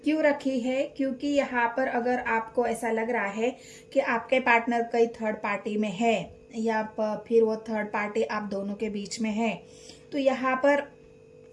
क्यों रखी है? क्योंकि यहाँ पर अगर आपको ऐसा लग रहा है कि आपके पार्टनर कई थर्ड पार्टी में है, या फिर वो थर्ड पार्टी आप दोनों के बीच में है, तो यहाँ पर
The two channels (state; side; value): identical; both; correlation 1.00